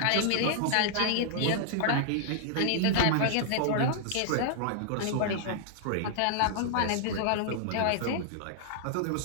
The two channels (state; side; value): different; both; correlation -0.01